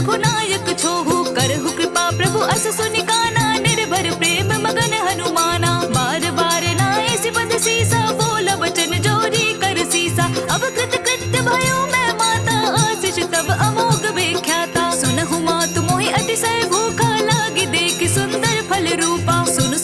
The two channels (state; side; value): identical; both; correlation 1.00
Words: छोहु करहु कृपा प्रभु अस सुनि काना निर्भर प्रेम मगन हनुमाना बार बार नाए सिपद सीसा बोला वचन जोरी कर सीसा अब कृत कृत्य भयो मैं माता आशीष तब अमोघ व्याख्याता सुनहु मातु मोहि अतिशय भूखा लागी देख सुंदर फल रूपा सुन